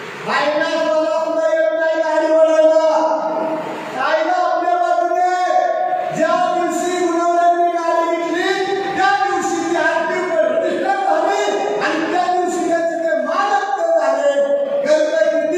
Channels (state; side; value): identical; both; correlation 1.00